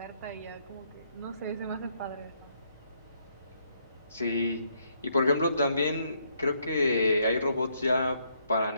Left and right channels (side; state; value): both; inverted; correlation -0.73